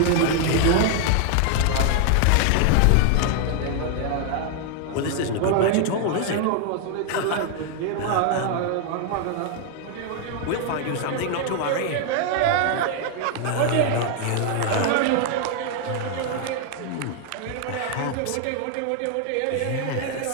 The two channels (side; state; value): both; different; correlation 0.00